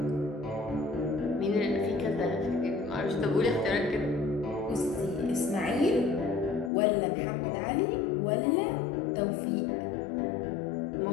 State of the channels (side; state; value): right; drops out; at 6.7 s